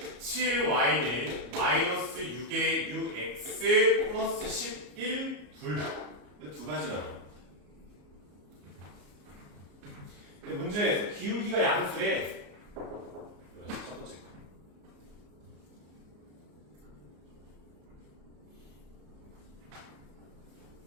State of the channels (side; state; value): left; late; 34 ms